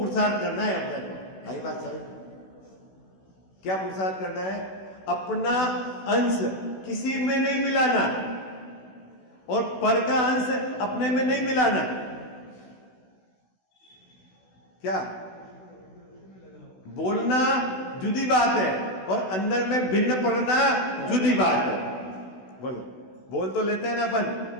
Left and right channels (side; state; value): right; late; 16 ms